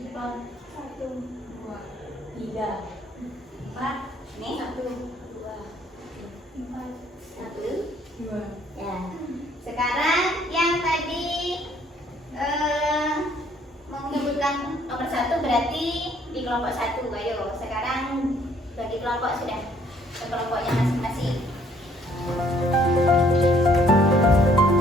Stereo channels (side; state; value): both; normal; correlation 0.63